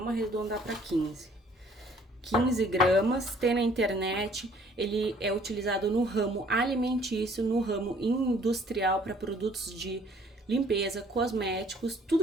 arredondar para 15. 15 gramas, tem na internet, ele é utilizado no ramo alimentício, no ramo industrial para produtos de limpeza, cosméticos,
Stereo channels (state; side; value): normal; both; correlation 0.58